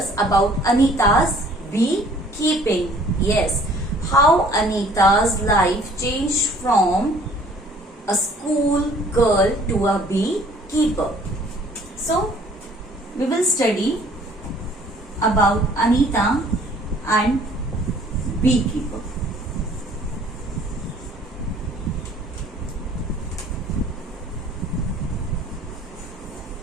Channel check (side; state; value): both; normal; correlation 0.55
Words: about Anita's beekeeping. Yes, how Anita's life changed from a school girl to a beekeeper. So, we will study about Anita and beekeeper.